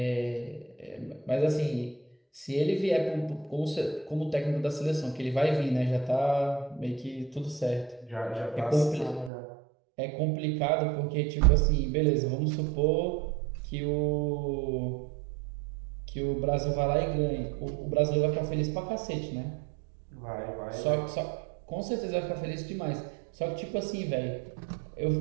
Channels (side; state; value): left; drops out; at 9.3 s